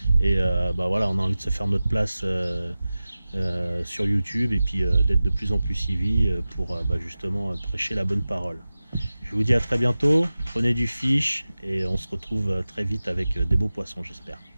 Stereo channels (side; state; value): both; inverted; correlation -0.96